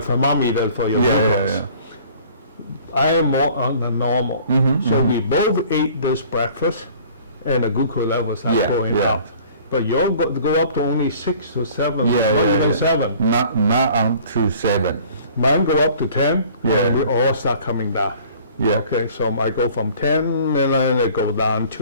thermometer for your glucose. I am more on the normal. So we both ate this breakfast, and the glucose levels are going up. But you'll go up to only 6 to 7, not even 7. Not on to 7. Mine go up to 10, and we all start coming down. Okay, so I go from 10, and then I go down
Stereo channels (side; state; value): both; inverted; correlation -0.51